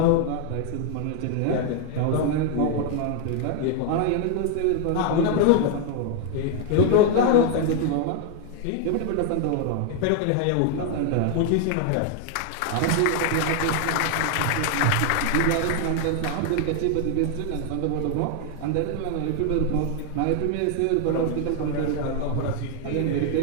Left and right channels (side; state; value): both; different; correlation 0.00